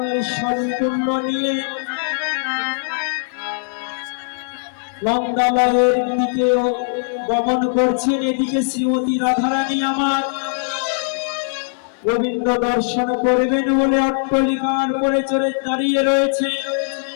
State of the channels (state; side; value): silent; right; digital silence